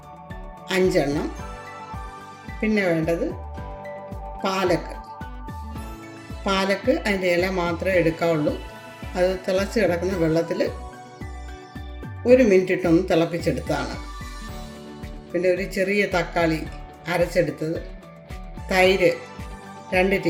5 എണ്ണം, പിന്നെ വേണ്ടത് പാലക്ക്. അതിൻ്റെ ഇല മാത്രമേ എടുക്കാവുള്ളൂ. അത് തിളച്ച് കിടക്കുന്ന വെള്ളത്തിൽ 1 മിനിറ്റ് ഇട്ടൊന്ന് തിളപ്പിച്ചെടുത്തതാണ്. പിന്നെ ഒരു ചെറിയ തക്കാളി അരച്ചെടുത്തത്, തൈര് 2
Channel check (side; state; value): both; identical; correlation 1.00